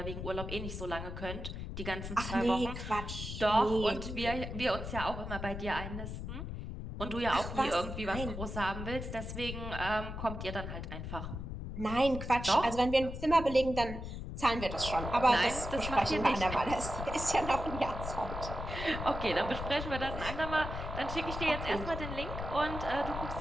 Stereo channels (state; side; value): noise; left; rumble, 6 dB below the sound